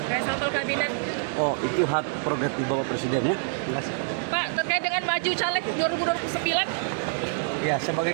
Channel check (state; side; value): silent; left; 61 dB below the other